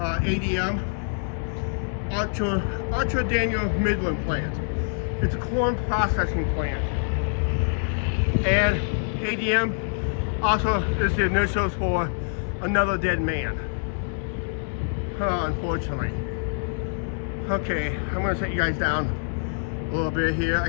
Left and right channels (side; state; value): right; silent; 61 dB below the other